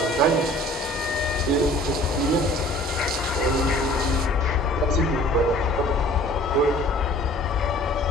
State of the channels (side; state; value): both; normal; correlation 0.50